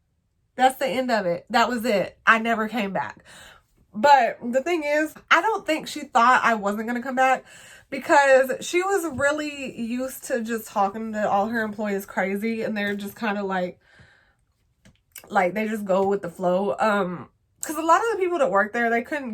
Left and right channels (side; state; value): both; identical; correlation 1.00